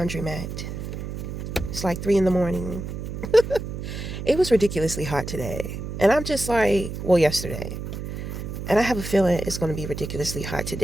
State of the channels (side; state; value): right; noise; hum, 7 dB below the sound